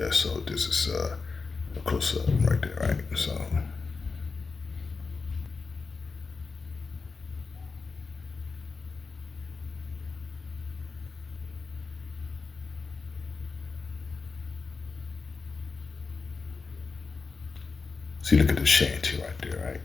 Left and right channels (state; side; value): quieter; right; 4.5 dB